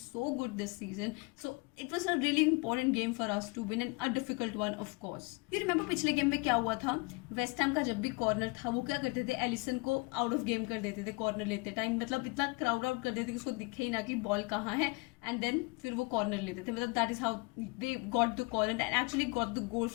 so good this season, so it was a really important game for us to win, and a difficult one of course. You remember पिछले game में क्या हुआ था? West हैम का जब भी corner था वो क्या करते थे, एलिसन को आउट ऑफ गेम कर देते थे कॉर्नर लेते टाइम, मतलब इतना क्राउड आउट कर देते कि उसको दिखे ही ना कि बॉल कहाँ है, एंड देन फिर वो कॉर्नर लेते थे. मतलब that is how they got the corner and actually got the goal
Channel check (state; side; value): quieter; right; 28.3 dB